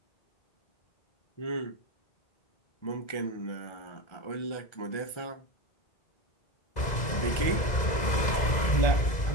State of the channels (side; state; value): right; late; 2.0 ms